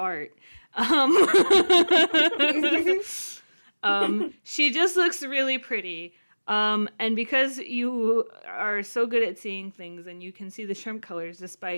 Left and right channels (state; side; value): inverted; both; correlation -1.00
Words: She just looks really pretty. And because you are so good at seeing things and you can see the shrimp colors